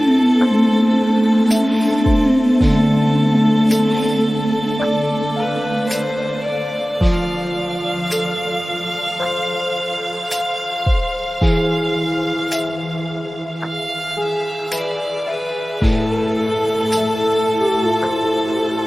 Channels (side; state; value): both; normal; correlation 0.97